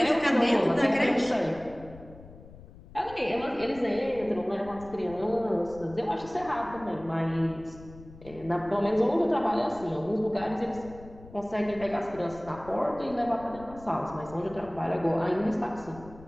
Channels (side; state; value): left; noise; rumble, 19 dB below the sound